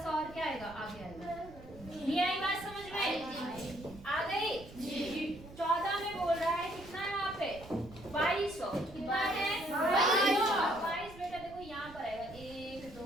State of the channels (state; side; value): noise; right; rumble, 17 dB below the sound